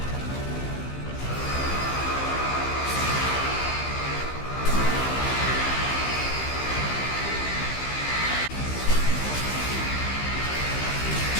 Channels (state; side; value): late; right; 15 ms